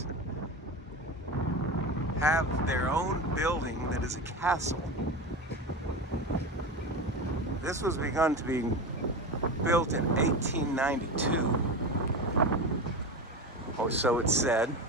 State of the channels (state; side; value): normal; both; correlation 0.24